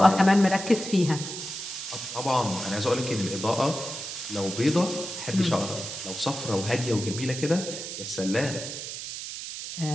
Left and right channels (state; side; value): noise; right; hiss, 7 dB below the sound